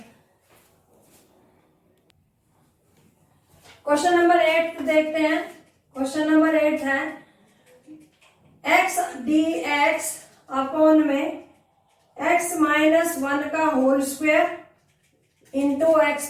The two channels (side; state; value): both; identical; correlation 1.00